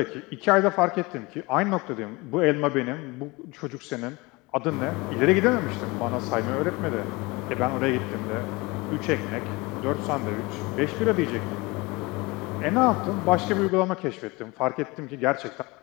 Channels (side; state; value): right; quieter; 24.3 dB